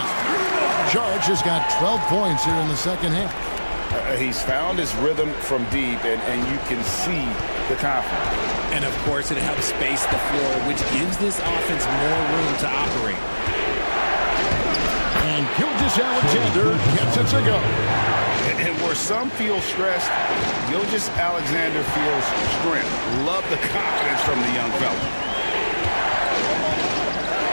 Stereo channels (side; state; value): both; inverted; correlation -1.00